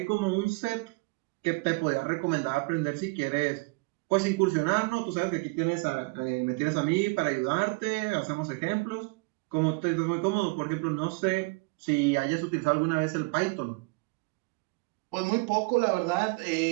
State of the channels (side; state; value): left; quieter; 27.8 dB